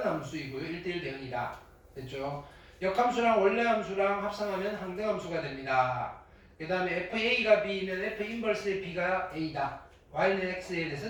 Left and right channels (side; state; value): both; identical; correlation 1.00